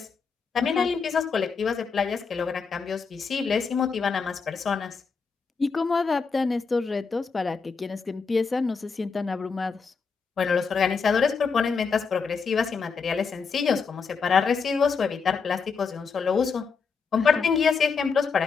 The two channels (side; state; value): right; quieter; 5.3 dB